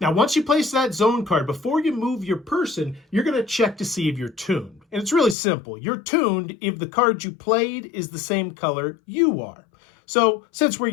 Now, once you place that zone card, before you move your person, you're going to check to see if you're tuned. And it's really simple. You're tuned if the card you played is the same color you are. So, since we're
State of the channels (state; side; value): drops out; right; at 5.4 s